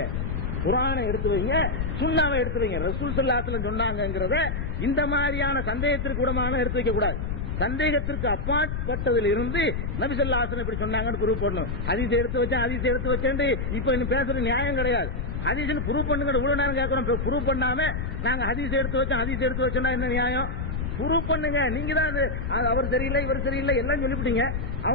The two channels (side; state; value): left; noise; rumble, 3 dB below the sound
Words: குர்ஆனை எடுத்து வைங்க, சுன்னாவை எடுத்து வைங்க. ரசூல் ஸல்லல்லாஹு அலைஹி வஸல்லம் சொன்னாங்கங்கறத இந்த மாதிரியான சந்தேகத்திற்கு கூடமான எடுத்து வைக்க கூடாது. சந்தேகத்திற்கு அப்பாற்பட்டதில் இருந்து நபி ஸல்லல்லாஹு அலைஹி வஸல்லம் இப்படி சொன்னாங்கன்னு ப்ரூவ் பண்ணணும். ஹதீஸ் எடுத்து வச்சேன் இப்ப இன்னும் பேசுற நியாயம் கிடையாது. ஹதீஸ்னு ப்ரூவ் பண்ணுங்க. இவ்வளவு நேரம் கேட்கறோம், ப்ரூவ் பண்ணாம நாங்க ஹதீஸ் எடுத்து வச்சோம்னா என்ன நியாயம்? ப்ரூவ் பண்ணுங்க. நீங்க தான் அவர் சரியில்லை இவர் சரியில்லை எல்லாம் சொல்லிவிட்டீங்க.